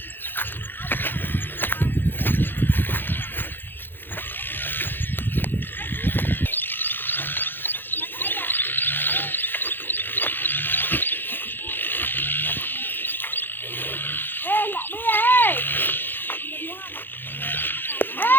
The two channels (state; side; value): late; right; 0.097 ms